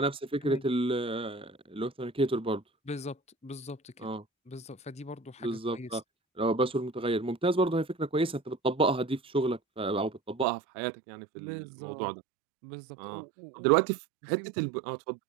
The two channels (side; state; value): left; drops out; at 10.5 s